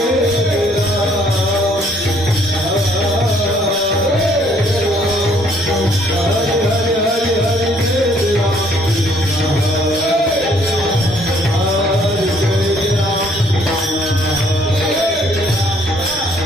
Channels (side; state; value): both; normal; correlation 0.64